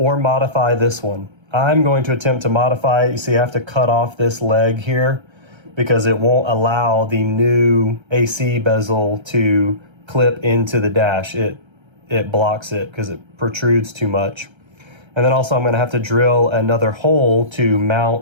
modify this one. I'm going to attempt to modify it. You see, I have to cut off this leg here because it won't allow the new AC bezel to clip into the dash. It blocks it because it protrudes too much. And then also I'm going to have to drill another hole to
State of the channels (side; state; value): left; late; 1.3 ms